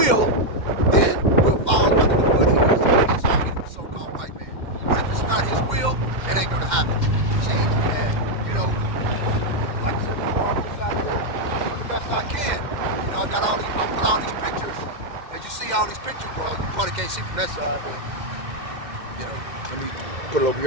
then we'll fall under the foot he is of his army, the so-called white man. But if it's not his will, it ain't gonna happen. See, and you know, like I said before, I'm just out here doing the best I can. You know, I put all these pictures. As you see all these pictures, well, you probably can't see from that side, but you know, let me put it over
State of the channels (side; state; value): left; late; 2.1 ms